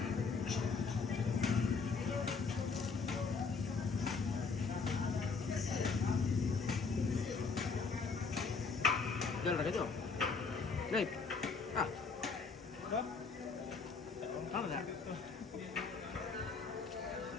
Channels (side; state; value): right; quieter; 4.8 dB